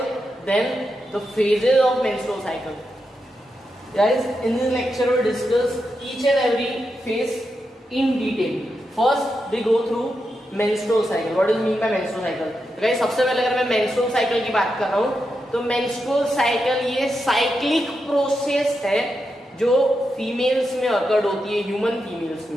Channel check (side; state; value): both; normal; correlation 0.86